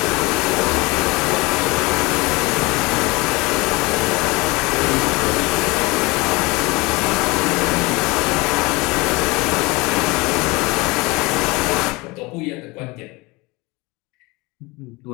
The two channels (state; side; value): quieter; right; 23.8 dB